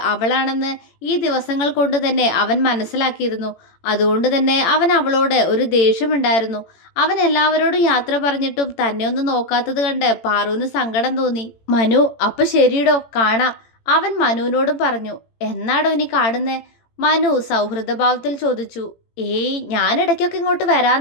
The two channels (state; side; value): late; right; 18 ms